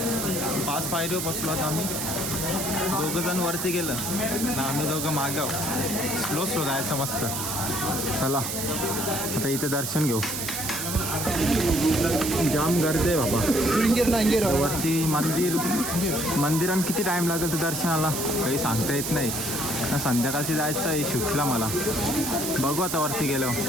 5 पायरीवर बसलो आता आम्ही. 2 जण वरती गेलं ना, आम्ही 2 मागाव. स्लो जायचं मस्त. चला आता इथे दर्शन घेऊ. जाम गर्दी आहे बाबा. वरती मंदिरात किती टाईम लागेल तर दर्शनाला काही सांगता येत नाही. संध्याकाळची जायचं आहे शूटला मला. बघू आता वरती गेलो.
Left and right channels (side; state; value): right; noise; hiss, 3 dB below the sound